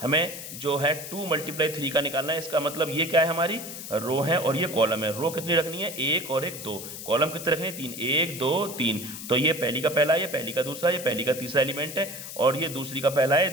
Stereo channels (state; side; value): noise; left; hiss, 10 dB below the sound